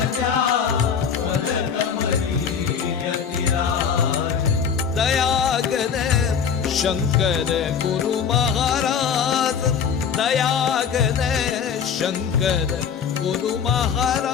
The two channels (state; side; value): quieter; right; 7.1 dB